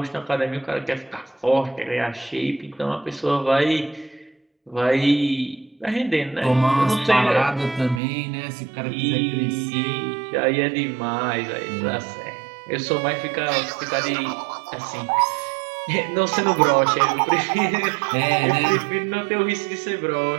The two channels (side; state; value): left; drops out; at 8.0 s